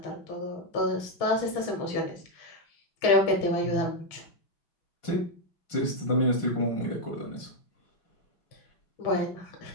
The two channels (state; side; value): late; right; 6.2 ms